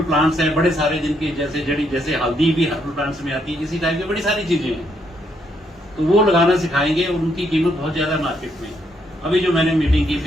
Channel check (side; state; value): both; normal; correlation 0.74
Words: प्लांट्स हैं बड़े सारे, जिनकी जैसे हल्दी भी हर्बल प्लांट्स में आती है, इसी टाइप की बड़ी सारी चीजें हैं, तो वो लगाना सिखाएंगे और उनकी कीमत बहुत ज्यादा मार्केट में। अभी जो मैंने मीटिंग की